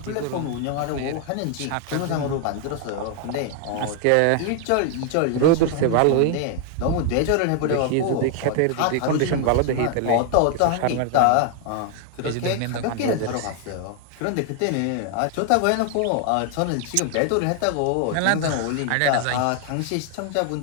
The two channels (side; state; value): both; different; correlation 0.00